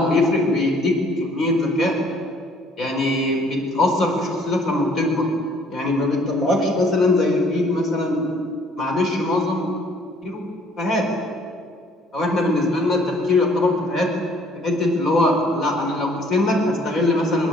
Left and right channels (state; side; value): normal; both; correlation 0.59